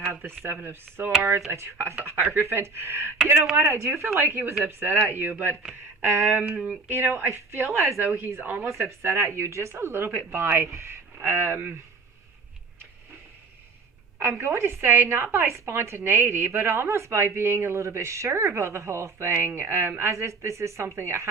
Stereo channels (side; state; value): left; quieter; 4.2 dB